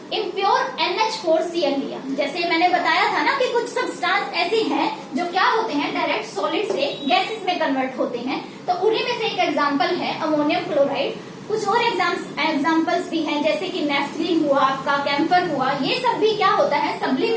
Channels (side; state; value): both; identical; correlation 1.00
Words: इम्प्योर NH4Cl लिया। जैसे मैंने बताया था ना कि कुछ सब्सटेंस ऐसे हैं जो क्या होते हैं, डायरेक्ट सॉलिड से गैसेस में कन्वर्ट होते हैं। तो उन्हीं में से एक एग्जांपल है अमोनियम क्लोराइड। कुछ और एग्जांपल्स भी हैं, जैसे कि नेफ्थलीन हुआ, आपका कैम्फर हुआ, ये सब भी क्या होता है,